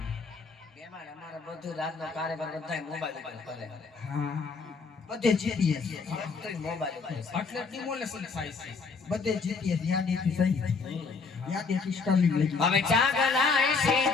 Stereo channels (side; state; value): right; quieter; 4.7 dB